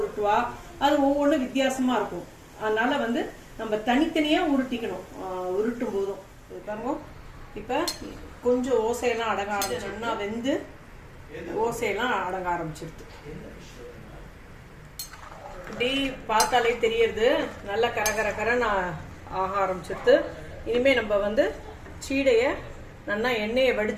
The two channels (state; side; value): identical; both; correlation 1.00